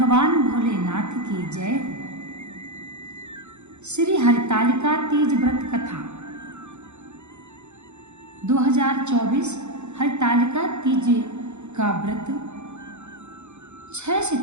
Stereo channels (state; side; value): late; left; 0.83 ms